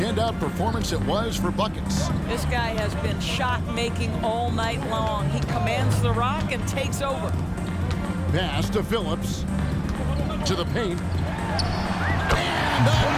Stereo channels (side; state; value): both; identical; correlation 1.00